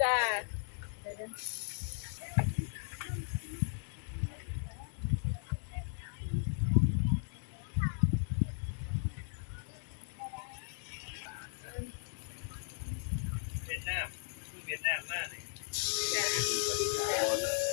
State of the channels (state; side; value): silent; right; digital silence